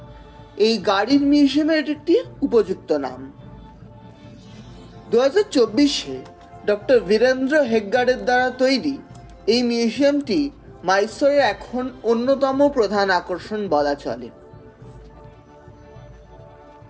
এই গাড়ির মিউজিয়ামের একটি উপযুক্ত নাম। 2024-এ ডক্টর বীরেন্দ্র হেগগাড়ের দ্বারা তৈরি এই মিউজিয়ামটি মাইসোরের এখন অন্যতম প্রধান আকর্ষণ বলা চলে।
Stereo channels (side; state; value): both; identical; correlation 1.00